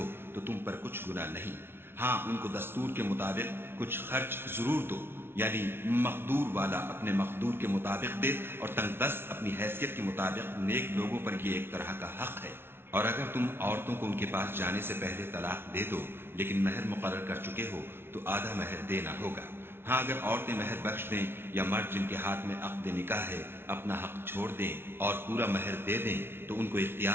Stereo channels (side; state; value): left; late; 0.11 ms